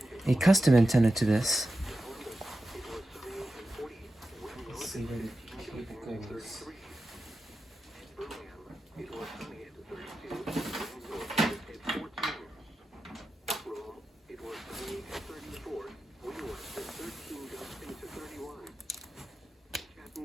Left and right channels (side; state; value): both; normal; correlation 0.91